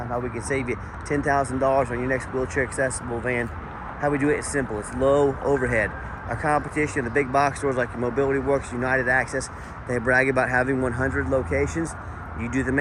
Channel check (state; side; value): identical; both; correlation 1.00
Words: how we can save you $10,000 on your next wheelchair accessible van. How we do it is simple, it's low overhead. Our competition, the big box stores like Mobility Works, United Access, they brag about having 100 locations. You do the